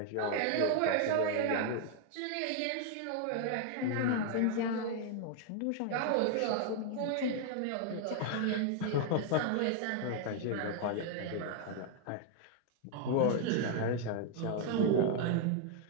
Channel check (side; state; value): both; different; correlation 0.00